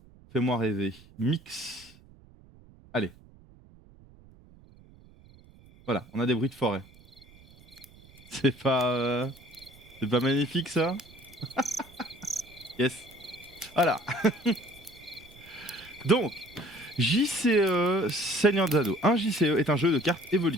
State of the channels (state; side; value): noise; right; rumble, 24 dB below the sound